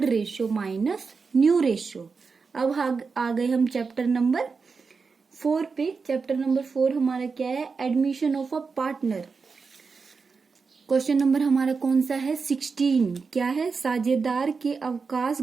ratio minus new ratio. अब आ गए हम चैप्टर नंबर 4 पे। चैप्टर नंबर 4 हमारा क्या है? Admission of a partner. Question number हमारा कौन सा है? 16। क्या है? साझेदार के अवकाश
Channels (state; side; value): quieter; left; 4.9 dB